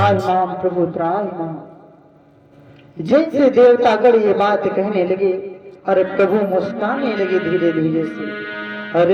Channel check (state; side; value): identical; both; correlation 1.00